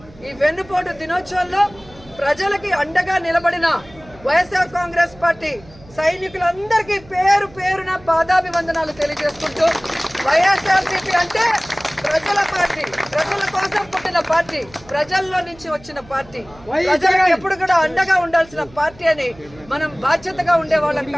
ఈ వెన్నుపోటు దినోత్సవంలో ప్రజలకి అండగా నిలబడిన వైఎస్ఆర్ కాంగ్రెస్ పార్టీ సైనికులందరికీ పేరు పేరున పాదాభివందనాలు తెలియజేసుకుంటూ వైఎస్ఆర్సీపీ అంటే ప్రజల పార్టీ, ప్రజల కోసం పుట్టిన పార్టీ, ప్రజల్లో నుంచి వచ్చిన పార్టీ, ప్రజలకు ఎప్పుడు కూడా అండగా ఉండాల్సిన పార్టీ అని మనం బాధ్యతగా ఉండేవాళ్ళం.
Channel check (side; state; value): right; noise; hum, 23 dB below the sound